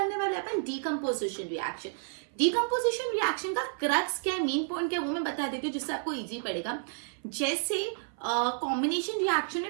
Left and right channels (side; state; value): left; silent; 57 dB below the other